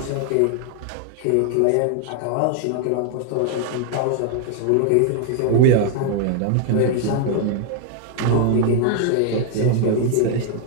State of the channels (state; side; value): different; both; correlation 0.00